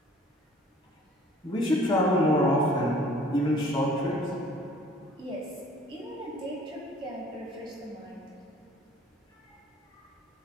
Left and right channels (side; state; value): both; normal; correlation 0.53